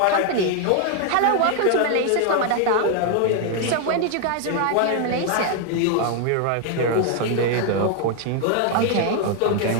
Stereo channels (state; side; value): different; both; correlation 0.00